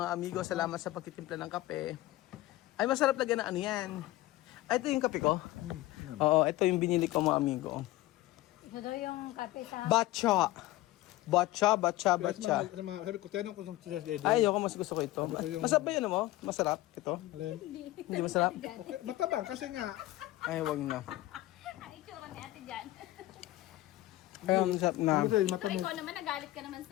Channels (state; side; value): quieter; right; 17.2 dB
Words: amigo. Salamat sa pagtitimpla ng kape. Ay, masarap lagyan na ano yan. Ay, ito yung kape ko. Oo, ito yung binili ko mga amigo. Ito daw yung kape sa... Batcha. Sabi ko, tinanong ko sa Dede. Ay, ayoko, mas gusto ko ito. Masarap ba yun mo? Masarap ito? Hindi masarap? Okay, matabang kasi nga, Ay, wag na. Ang itsura ni ate dyan. Ay, masarap na. kasi matabang. Ikaw naman, nagalit ka naman